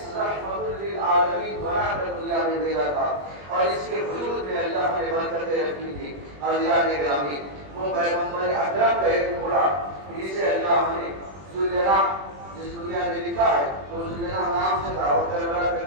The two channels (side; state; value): left; late; 21 ms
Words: رحمت للعالمین بنا کر دنیا میں بھیجا تھا اور اس کے وجود میں اللہ نے برکتیں رکھی تھی. اللہ نے گرامی وہ پیغمبر اکرم کا ایک گھوڑا جسے اللہ نے ذوالجناح جس دنیا میں لکھا ہے وہ ذوالجناح نام سے تھا اور کربلا